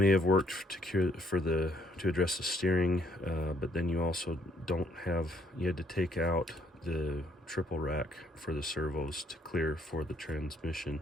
have worked to address the steering, but then you also you had to take out the triple rack for the servos to clear for the transmission,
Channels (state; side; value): normal; both; correlation 0.68